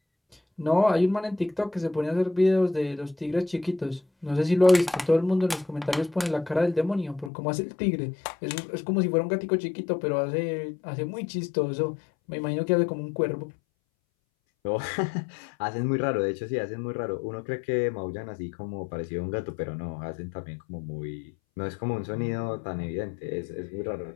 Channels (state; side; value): drops out; right; at 7.3 s